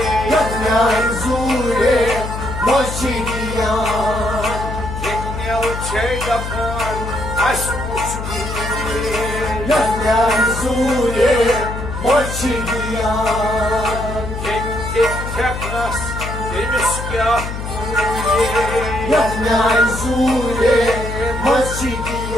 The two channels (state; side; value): noise; left; hum, 6 dB below the sound